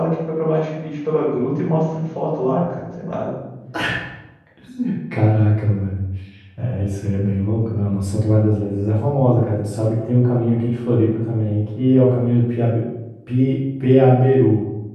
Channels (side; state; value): both; identical; correlation 1.00